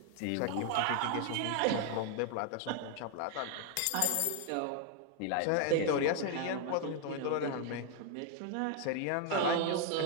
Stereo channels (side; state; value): both; different; correlation 0.00